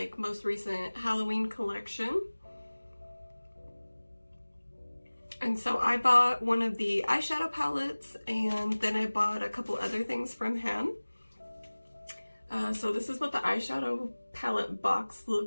most recent Halloween collection. And so I bought one of the eyeshadow palettes, and then I bought a couple other things from him. So this is what the eyeshadow palette box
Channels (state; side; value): inverted; both; correlation -1.00